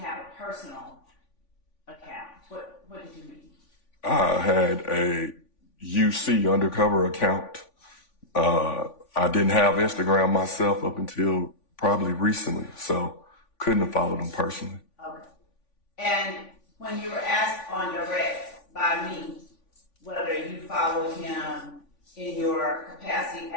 a personal account? What did you mean? I had a UC undercover account. I didn't have Instagram myself up until probably recently, so couldn't have followed them personally. Okay. And when you were asked on direct by me whether you followed him in your capacity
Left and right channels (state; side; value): late; right; 3.5 ms